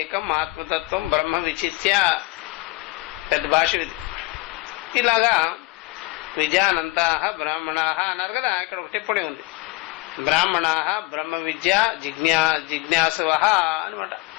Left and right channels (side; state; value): right; quieter; 22.6 dB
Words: ఆత్మతత్వం బ్రహ్మ విచిత్య. పెద్ద భాష ఇది. ఇలాగా విజానంత బ్రాహ్మణ అన్నారు కదా. ఇక్కడ ఒక టిప్పణి ఉంది. బ్రాహ్మణ బ్రహ్మ విద్య జిజ్ఞాసవ అనమాట.